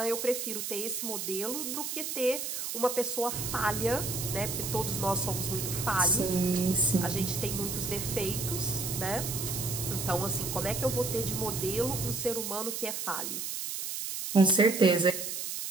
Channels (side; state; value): right; noise; hiss, 4 dB below the sound